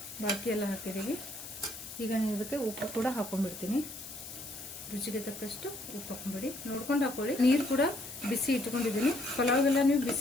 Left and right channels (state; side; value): noise; left; hiss, 12 dB below the sound